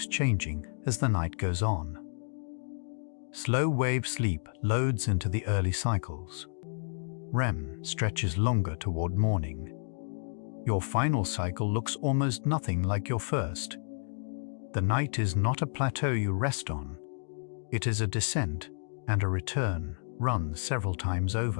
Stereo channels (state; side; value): silent; right; digital silence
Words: changing as the night goes on. Slow wave sleep loads into the early cycles. REM stretches longer toward morning. Your final cycle looks almost nothing like your first. The night is not a plateau you rest on. It is a descent and a return run several times